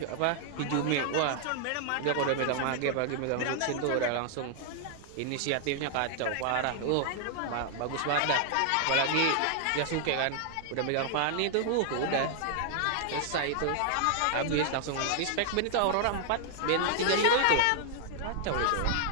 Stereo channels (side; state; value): both; different; correlation 0.00